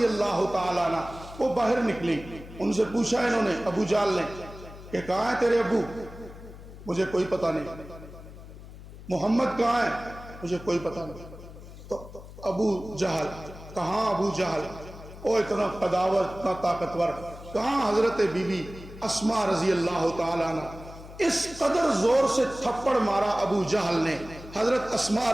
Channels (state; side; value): noise; left; hum, 16 dB below the sound